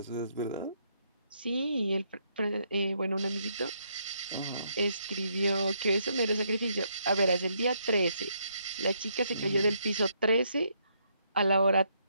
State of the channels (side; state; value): both; inverted; correlation -0.75